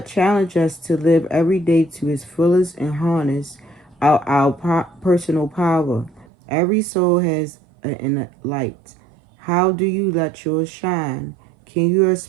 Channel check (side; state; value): left; drops out; at 6.2 s